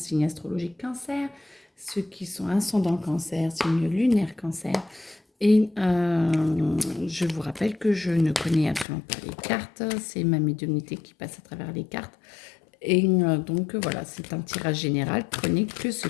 astrologiques cancer, ceux qui sont ascendant cancer, signe lunaire cancer. Et je vous rappelle que je ne connais absolument pas les cartes, c'est ma médiumnité qui passe à travers les cartes. Et donc voilà, c'est un tirage général, prenez que ce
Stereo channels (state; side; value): drops out; right; at 8.8 s